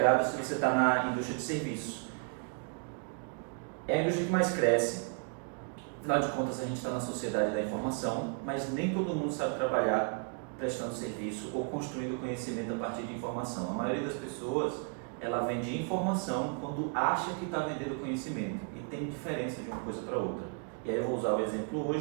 se você está na indústria de serviço. É a indústria que mais cresce. Afinal de contas, a gente está na sociedade da informação, mas nem todo mundo sabe trabalhar prestando serviço ou construindo conhecimento a partir de informação. A maioria das pessoas, ela vende informação quando acha que está vendendo conhecimento, e tem diferença de uma coisa para outra. E aí eu vou usar o exemplo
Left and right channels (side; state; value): left; quieter; 38.7 dB